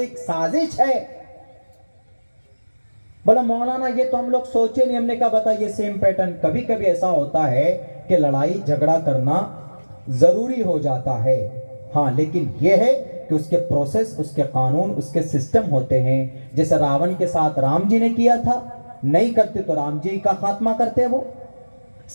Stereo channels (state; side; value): inverted; both; correlation -1.00